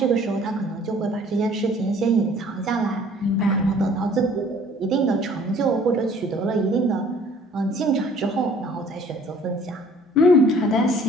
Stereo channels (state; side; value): normal; both; correlation 0.54